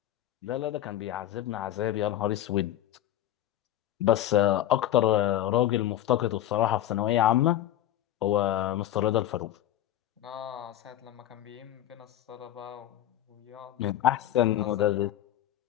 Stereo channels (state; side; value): quieter; right; 12.6 dB